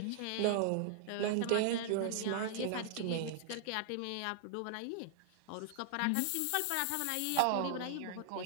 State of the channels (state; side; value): different; both; correlation -0.01